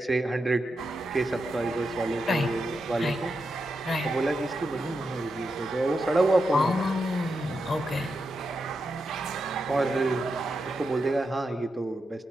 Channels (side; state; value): both; normal; correlation 0.86